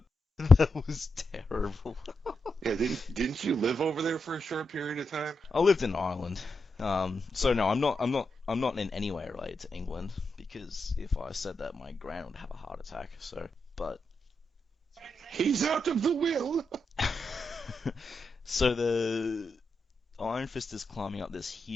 that was terrible. Yeah, didn't you live over there for a short period of time? I lived in Ireland, so no, I'm not in any way related to England, because if I said that, my gran would have a heart attack. So, but he's out of the will. so the Iron Fist is climbing up this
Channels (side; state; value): both; normal; correlation 0.86